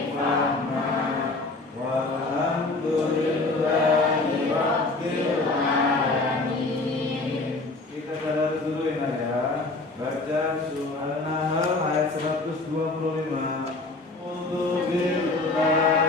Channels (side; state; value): right; quieter; 3.3 dB